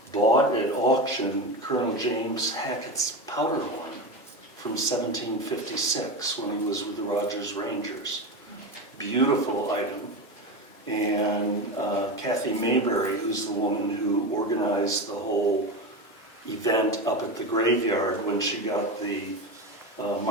bought at auction Colonel James Hackett's powder horn from 1756 when he was with the Rogers Rangers. Beautiful item. And Kathy Mayberry, who's the woman who organized the whole event up at the graveyard when she got the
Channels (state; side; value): normal; both; correlation 0.20